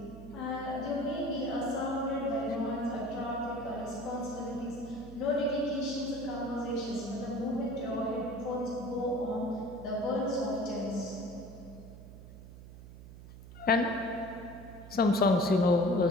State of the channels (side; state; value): right; noise; hum, 15 dB below the sound